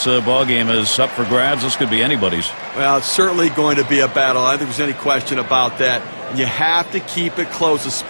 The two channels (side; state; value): both; inverted; correlation -1.00